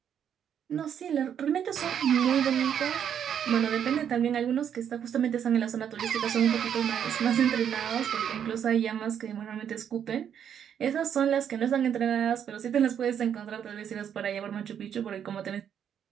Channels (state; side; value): quieter; left; 8.7 dB